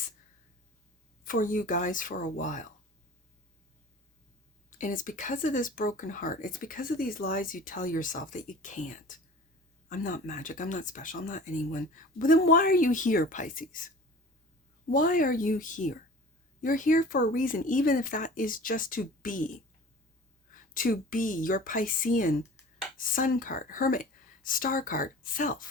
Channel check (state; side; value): normal; both; correlation 0.42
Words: for you guys for a while. And it's because of this broken heart. It's because of these lies you tell yourself that you can't. I'm not magic. I'm not special. I'm not anyone. But then why are you here, Pisces? Why are you here? You're here for a reason, even if that is just to be your Piscean sun card, hermit, star card,